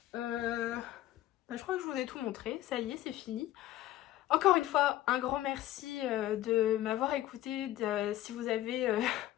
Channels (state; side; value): quieter; right; 14.4 dB